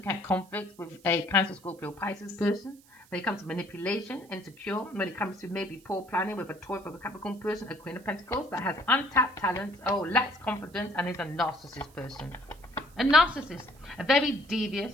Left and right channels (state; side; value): noise; right; hiss, 27 dB below the sound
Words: at conflicts with a Cancer, Scorpio, Pisces person. When it comes to manipulation, insecure. When it comes to maybe poor planning with a Taurus, a Capricorn person, a Queen of Pentacles that has untapped talents, lacks confidence, and is a narcissist person. A narcissist, a very